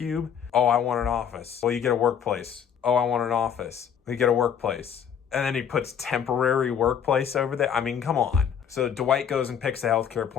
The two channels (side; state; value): right; quieter; 8.1 dB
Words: oh, I want an office. Well, you get a workplace. Oh, I want an office. You get a workplace. And then he puts temporary workplace over there. I mean, come on. So Dwight goes and picks a healthcare